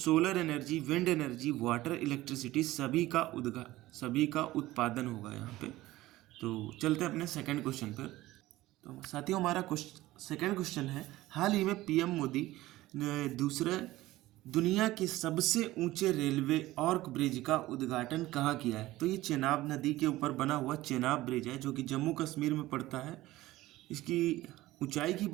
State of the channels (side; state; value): left; quieter; 17.1 dB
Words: energy, wind energy, water, electricity सभी का उत्पादन होगा यहाँ पे। तो चलते हैं अपने सेकंड क्वेश्चन पर। तो साथियों, हमारा सेकंड क्वेश्चन है, हाल ही में पीएम मोदी ने दूसरे दुनिया के सबसे ऊंचे रेलवे आर्क ब्रिज का उद्घाटन कहाँ किया है? तो ये चेनाब नदी के ऊपर बना हुआ चेनाब ब्रिज है, जो कि जम्मू कश्मीर में पड़ता है। इसकी ऊंचाई की